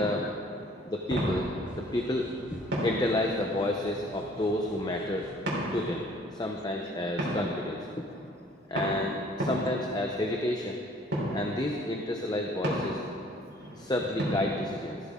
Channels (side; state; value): both; normal; correlation 0.56